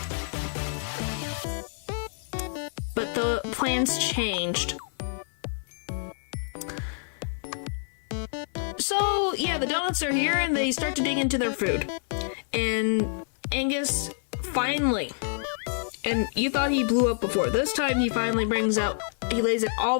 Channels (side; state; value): right; silent; 56 dB below the other